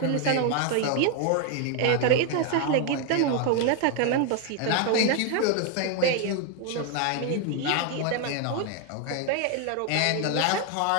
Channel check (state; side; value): different; both; correlation 0.01